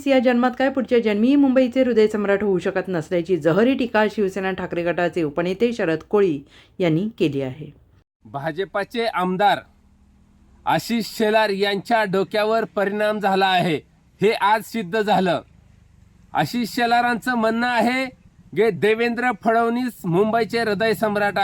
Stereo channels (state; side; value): identical; both; correlation 1.00